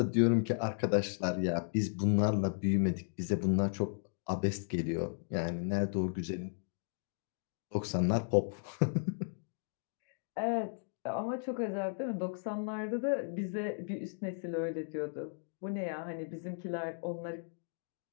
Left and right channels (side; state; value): right; silent; digital silence